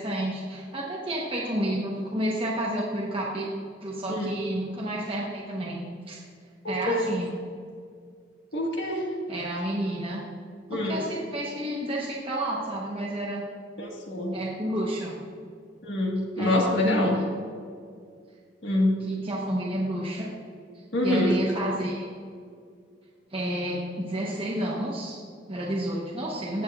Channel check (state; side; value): normal; both; correlation 0.55